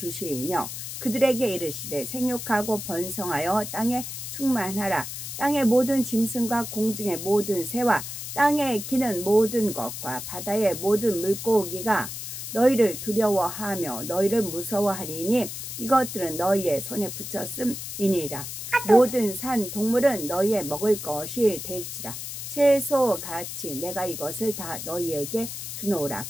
그들에게 이르시되 생육하고 번성하여 땅에 충만하라. 땅의 모든 짐승과 공중의 모든 새와 땅에 기는 모든 것과 바다의 모든 물고기가 너희를 두려워하며 너희를 무서워하리니 이것들은 너희의 손에 붙였음이니라. 모든 산 동물은 너희의 먹을 것이 될지라. 채소같이 내가 이것을 다 너희에게 주노라.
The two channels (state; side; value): noise; left; hiss, 7 dB below the sound